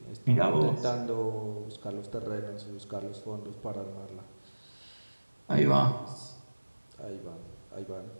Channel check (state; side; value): inverted; both; correlation -1.00